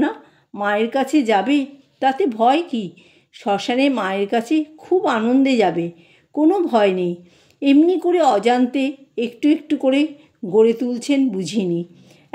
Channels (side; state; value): both; identical; correlation 1.00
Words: মায়ের কাছে যাবে, তাতে ভয় কি? শ্মশানে মায়ের কাছে খুব আনন্দে যাবে, কোনো ভয় নেই। এমনি করে অজান্তে একটু একটু করে গড়ে তুলছেন বুঝিনি।